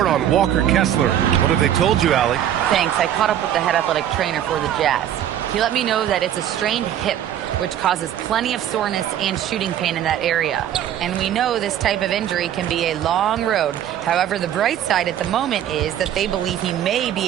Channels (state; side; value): quieter; left; 10.8 dB